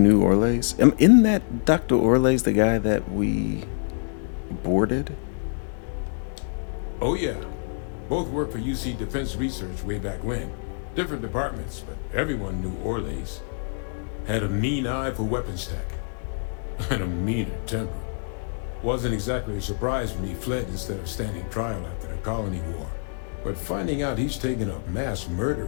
Orlays? Isn't that Dr. Orlays the guy that we boarded? Oh yeah. Both worked for UC Defense Research way back when. Different departments, but everyone knew Orlays. Had a mean eye for weapons tech. And a meaner temper. Wasn't exactly a surprise when he fled instead of standing trial after the Colony War. But finding out he's taken up mass murder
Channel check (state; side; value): silent; right; digital silence